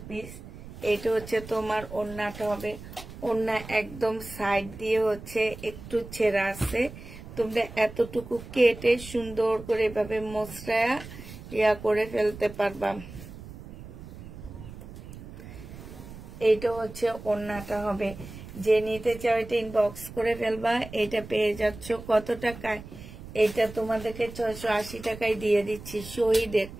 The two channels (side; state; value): right; noise; rumble, 14 dB below the sound